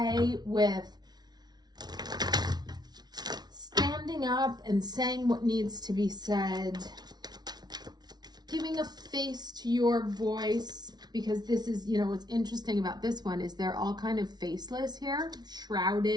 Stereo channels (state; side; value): late; left; 0.19 ms